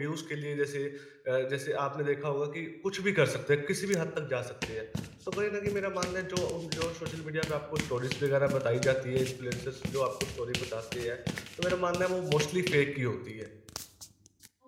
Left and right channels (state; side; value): identical; both; correlation 1.00